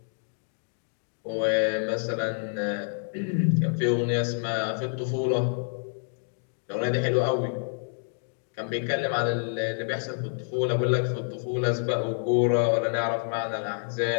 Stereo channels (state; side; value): silent; right; digital silence